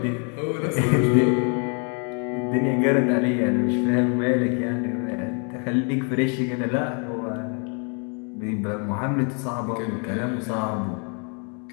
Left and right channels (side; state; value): right; quieter; 38.7 dB